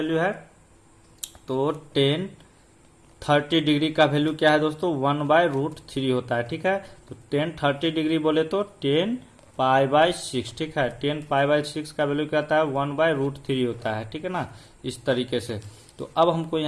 है, तो 30 डिग्री का वैल्यू क्या है दोस्तों, 1/√3 होता है, ठीक है। तो 30 डिग्री बोले तो 10π/6, ठीक है, 10π/6 का वैल्यू क्या होता है, 1/√3 होता है, ठीक है ना, इस तरीके से। तो अब हमको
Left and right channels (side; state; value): both; identical; correlation 1.00